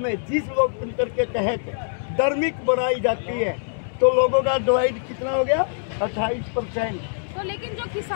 में जिस लोकतंत्र के तहत धार्मिक बनाई जाती है, तो लोगों का डिवाइड कितना हो गया, 28%। तो लेकिन जो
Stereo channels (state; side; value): silent; right; digital silence